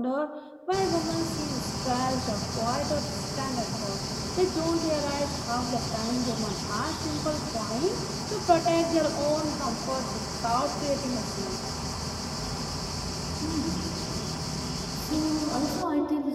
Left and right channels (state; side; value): identical; both; correlation 1.00